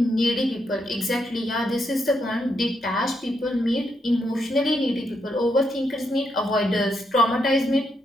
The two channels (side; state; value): both; normal; correlation 0.80